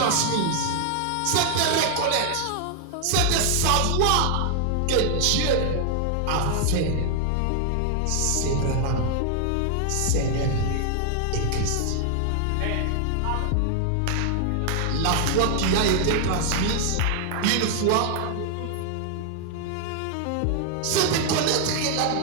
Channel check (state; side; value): different; both; correlation 0.00